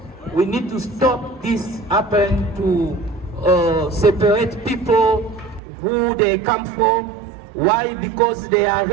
We need to stop this happen to separate people who they come from. Why? Because they are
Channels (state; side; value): drops out; left; at 5.6 s